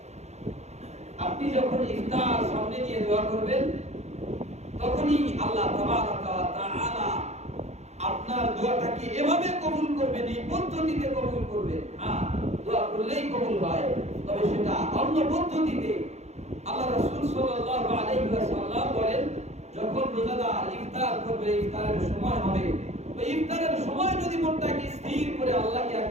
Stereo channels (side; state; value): left; late; 0.32 ms